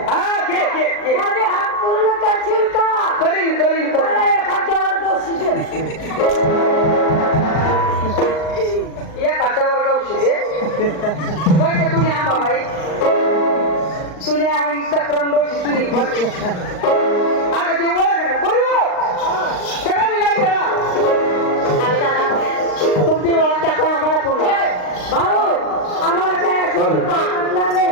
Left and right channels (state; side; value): late; right; 39 ms